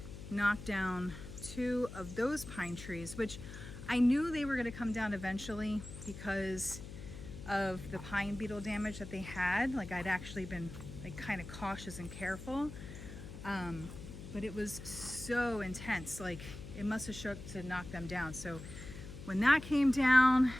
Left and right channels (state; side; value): noise; left; hum, 12 dB below the sound